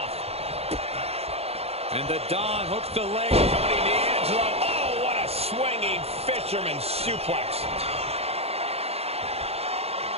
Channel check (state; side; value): late; left; 0.29 ms